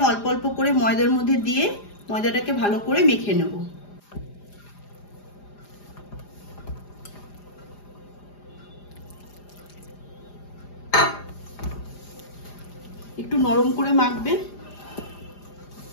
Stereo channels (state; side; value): late; right; 4.9 ms